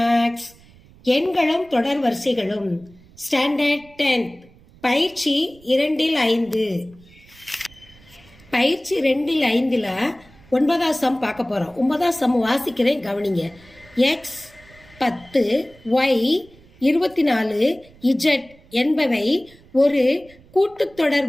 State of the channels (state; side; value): noise; right; rumble, 26 dB below the sound